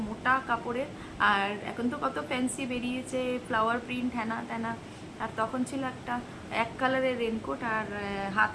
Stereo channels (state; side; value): identical; both; correlation 1.00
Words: মোটা কাপড়ের। আর এখন তো কত ফ্যান্সি বেরিয়েছে, ফ্লাওয়ার প্রিন্ট হ্যানা ত্যানা। আর তখন ছিল একটা এক কালারের রেনকোট, আর